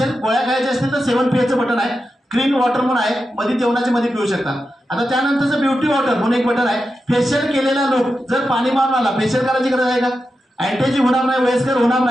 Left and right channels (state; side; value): normal; both; correlation 0.89